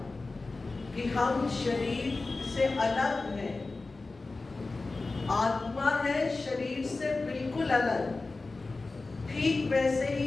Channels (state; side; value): quieter; right; 3.6 dB